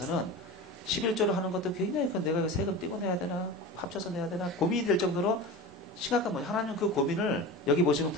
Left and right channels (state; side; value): normal; both; correlation 0.30